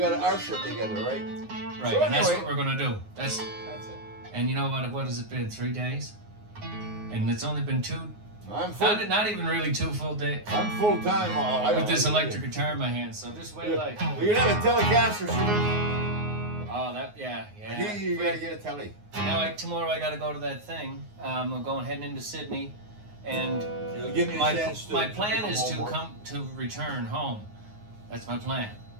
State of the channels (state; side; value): late; left; 9.6 ms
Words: our shit together, right? Right, So and that's anyway. what we're gonna do. That's it. and you know what has it been? 3 days, and it's only been 2. I'm full. Not even really 2 full days I'm full time. with this electric guitar in my hand. So just wait, like, We're gonna have a Telecaster soon. oh that yeah. You gotta get a telly. Now tomorrow I gotta go to that thing. I'm heading into Sydney, and It'll give me a my chance to plan become is to homework. return home. That's my plan.